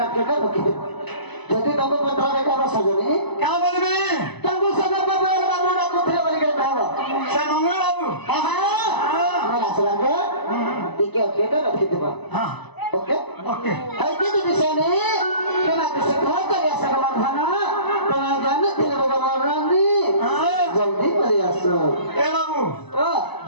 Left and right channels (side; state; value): right; late; 0.99 ms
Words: ओके कर रखिए जति तंको पत्र में का सजनी क्या बोलबे तंको सजन बाबू बाबू ना कुथे बोल के कहबो से मंगल बाबू हां मैं आसला के ठीक है ओके कर रखिए हां ओके ओके है कि